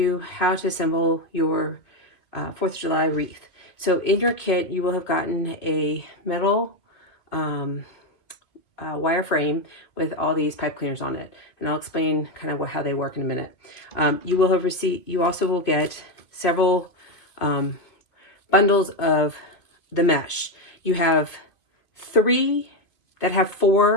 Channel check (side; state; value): right; late; 2.6 ms